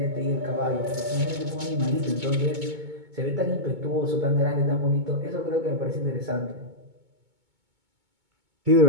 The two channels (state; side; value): late; left; 2.2 ms